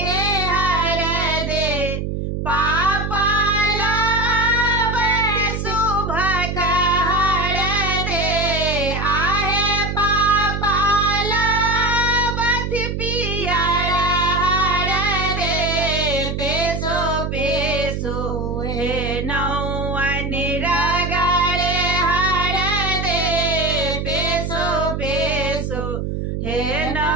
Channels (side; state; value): right; noise; hum, 3 dB below the sound